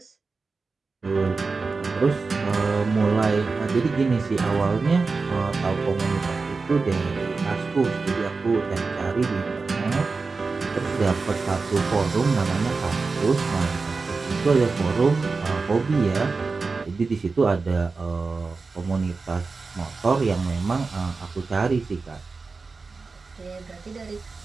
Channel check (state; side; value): quieter; left; 4.2 dB